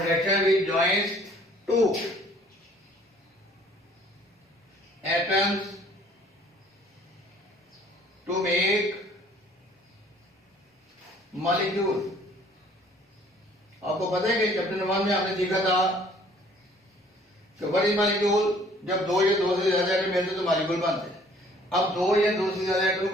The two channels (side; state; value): both; normal; correlation 0.56